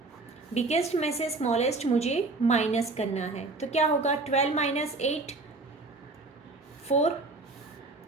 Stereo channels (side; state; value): left; quieter; 3.4 dB